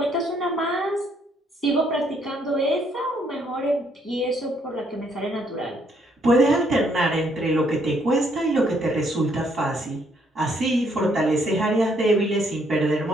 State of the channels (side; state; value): both; normal; correlation 0.69